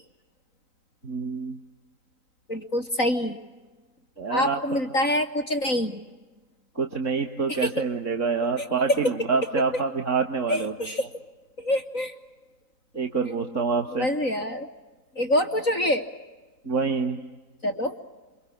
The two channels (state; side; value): late; right; 3.9 ms